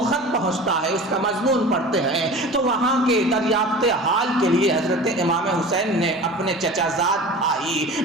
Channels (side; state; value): both; normal; correlation 0.37